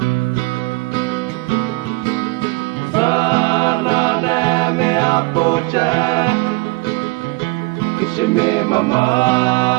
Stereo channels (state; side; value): quieter; left; 25.5 dB